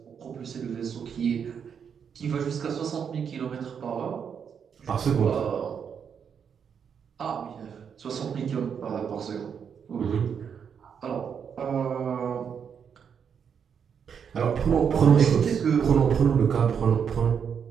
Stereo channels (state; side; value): quieter; left; 7.3 dB